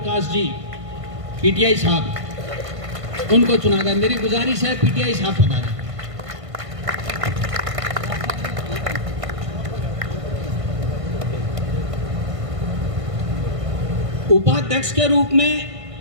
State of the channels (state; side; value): late; left; 1.5 ms